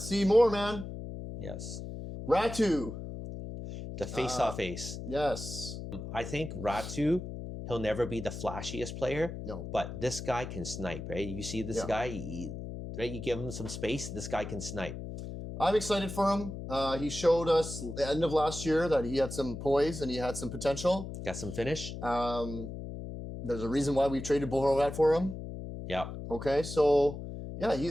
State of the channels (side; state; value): left; noise; hum, 8 dB below the sound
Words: see more, man. Yes. Ratu. The face-off ace. Yes. I think Ratu, he'll never be the flashiest player. No. But this guy can snipe, right? You see this guy, right? You give him some space, this guy can snipe. I'm excited for him. He showed us at the end of last year that he had some poise and he had some potential. Got some finish. There's a reason why we traded Boeser for him. Yeah. Okay, so yeah,